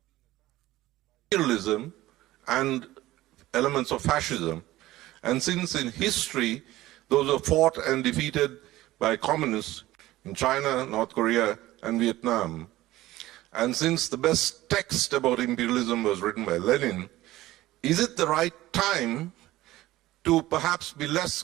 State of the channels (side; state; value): left; quieter; 16.6 dB